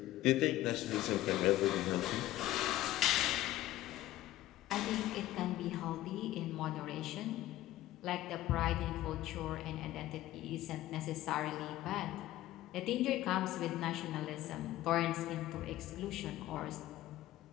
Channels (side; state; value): right; quieter; 15.3 dB